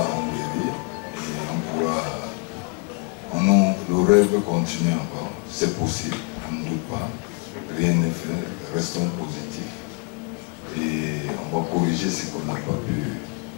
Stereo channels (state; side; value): quieter; right; 34.0 dB